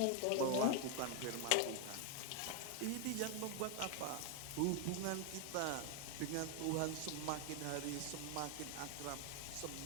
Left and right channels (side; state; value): both; different; correlation 0.01